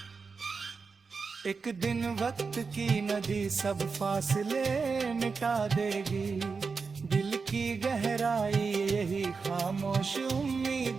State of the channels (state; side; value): quieter; left; 4.9 dB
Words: एक दिन वक्त की नदी सब फासले मिटा देगी। दिल की गहराई यही खामोश